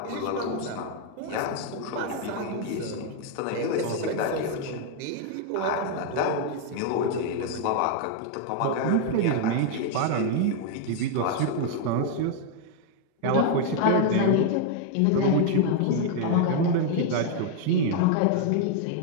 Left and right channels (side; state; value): both; different; correlation 0.00